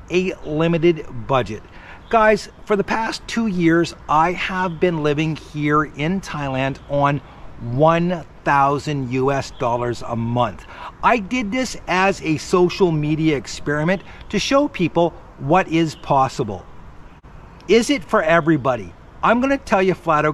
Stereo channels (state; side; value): identical; both; correlation 1.00